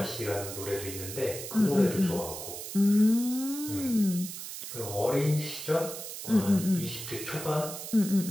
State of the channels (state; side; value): noise; right; hiss, 9 dB below the sound